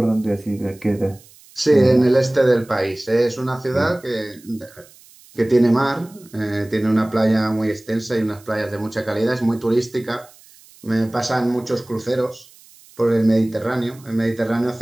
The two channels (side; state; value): right; noise; hiss, 25 dB below the sound